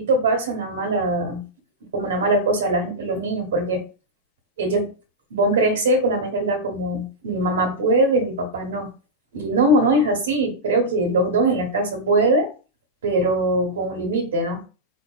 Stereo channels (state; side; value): normal; both; correlation -0.11